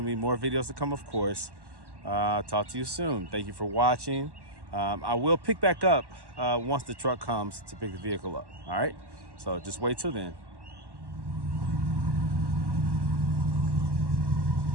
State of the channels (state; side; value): late; left; 1.1 ms